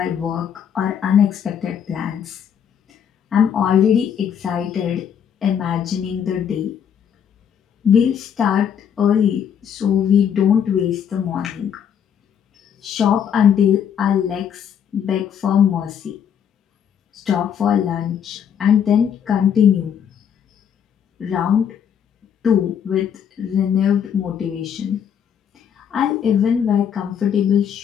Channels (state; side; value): quieter; right; 8.3 dB